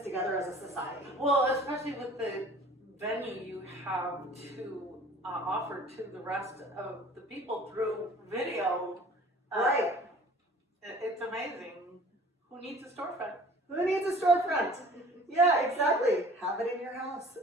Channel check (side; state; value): both; normal; correlation 0.48